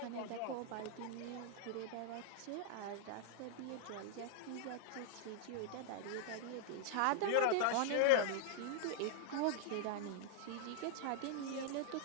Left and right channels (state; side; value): different; both; correlation -0.01